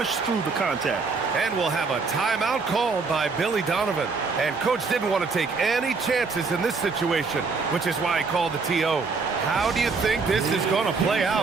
through the contact. And we'll have a timeout called by Billy Donovan. And Coach didn't want to take any chances in this situation, which is why he called the TO. How do you think this is going to play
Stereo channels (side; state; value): left; quieter; 4.5 dB